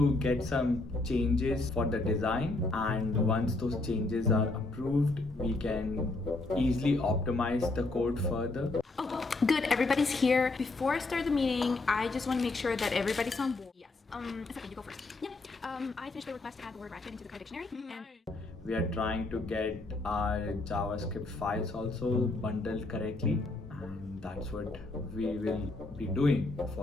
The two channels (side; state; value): right; quieter; 3.1 dB